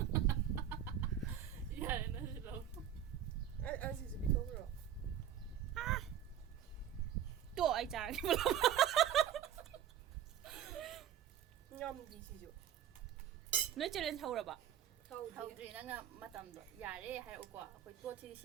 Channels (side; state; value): left; quieter; 10.1 dB